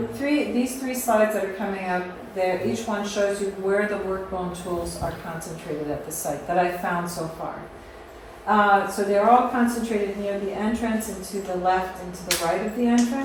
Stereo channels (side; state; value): both; identical; correlation 1.00